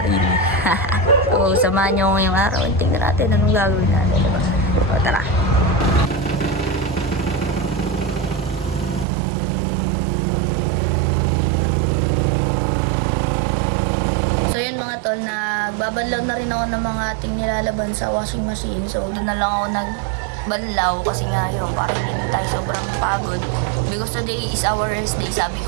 rin. So, samahan nyo ngayong araw. Tingnan natin anong gagawin natin, di ba? So, tara. So yun mga tol, nagbabanlaw na rin ako ng mga ating nilalaban sa washing machine. So doon na lang ako nagbanlaw kasi nga yun, parang hindi tayo sobrang pagod. Because today is our rest day. Sabi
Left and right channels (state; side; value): drops out; left; at 9.1 s